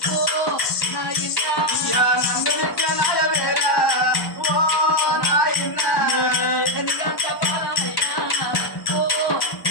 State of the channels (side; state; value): right; late; 1.1 ms